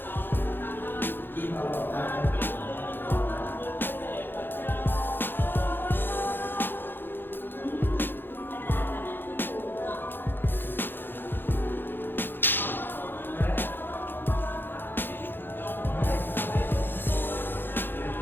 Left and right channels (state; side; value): late; right; 0.099 ms